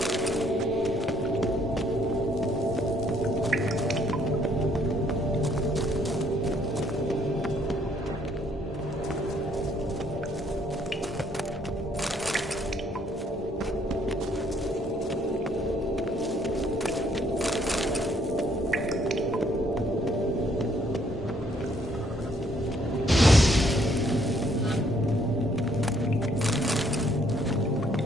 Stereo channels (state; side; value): normal; both; correlation 0.66